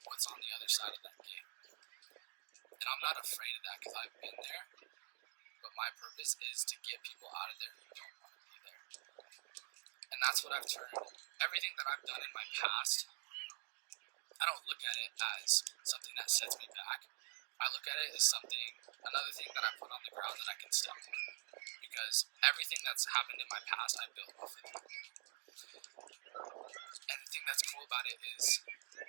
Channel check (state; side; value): quieter; left; 33.3 dB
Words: what's on the other side of that gate. And I'm not afraid of that because I've been there. But my purpose is to get people out of there who don't want to be there. And that's what I've turned. Everything that I've done in my past, I don't look at it as something that sets me back. I look at it as another thing that I put on the ground that I can step on. Because everything that's happened in my past, I built off of it. And the thing that's cool about it is